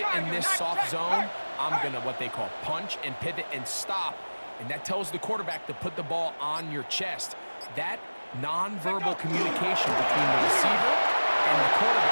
in this soft zone. I'm going to what they call punch and pivot and stop. And that tells the quarterback to put the ball on your chest. That nonverbal communication between the receiver and the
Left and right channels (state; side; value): inverted; both; correlation -1.00